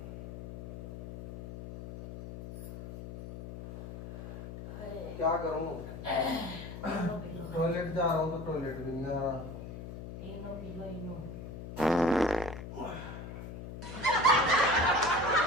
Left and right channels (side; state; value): left; noise; hum, 10 dB below the sound